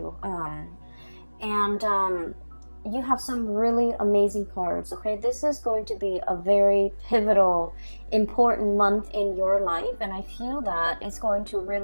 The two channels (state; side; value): inverted; both; correlation -1.00